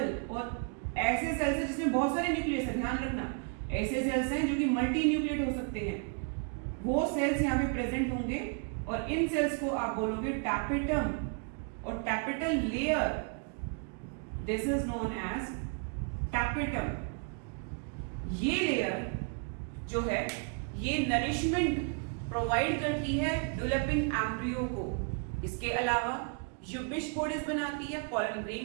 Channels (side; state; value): left; quieter; 39.1 dB